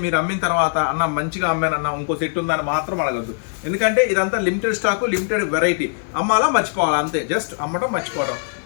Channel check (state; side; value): silent; right; digital silence